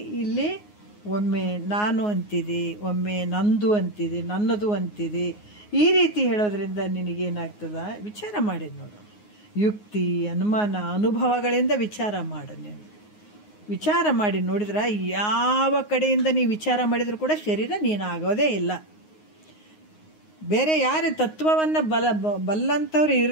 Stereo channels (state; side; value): late; right; 9.6 ms